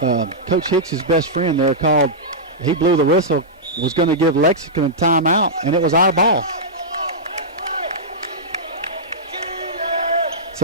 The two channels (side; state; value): both; normal; correlation -0.12